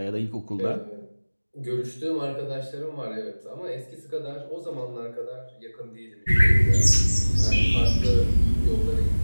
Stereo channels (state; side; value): inverted; both; correlation -1.00